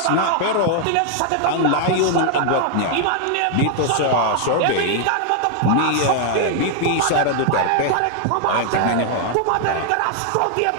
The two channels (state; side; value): different; both; correlation 0.00